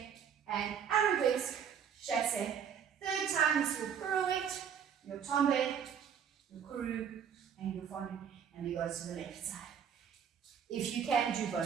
and arabesque, chassé. Third time is your pirouette, your tombe, your crew, and your fondue, and we go to the left side. If you can, do both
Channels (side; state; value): left; quieter; 7.9 dB